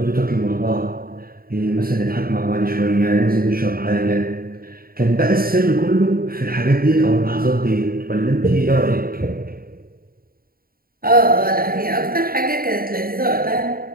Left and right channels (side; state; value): left; late; 0.43 ms